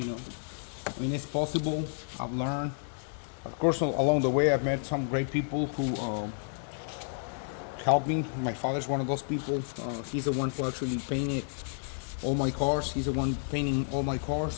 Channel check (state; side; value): silent; right; digital silence